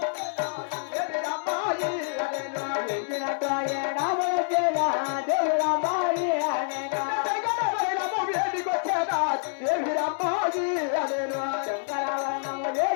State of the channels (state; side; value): silent; right; digital silence